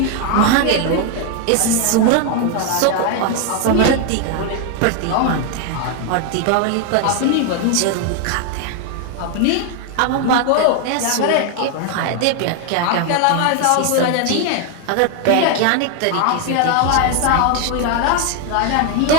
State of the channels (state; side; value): different; both; correlation 0.01